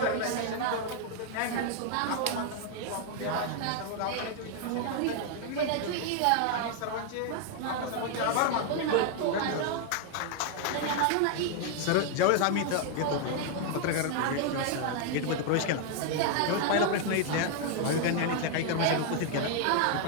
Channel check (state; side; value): different; both; correlation 0.00